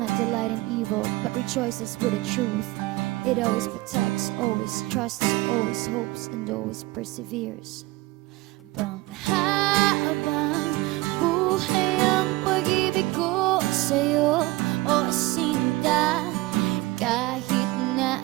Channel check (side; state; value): left; quieter; 20.2 dB